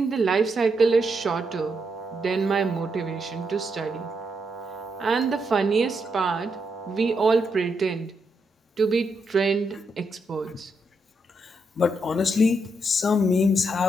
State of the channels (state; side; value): normal; both; correlation 0.80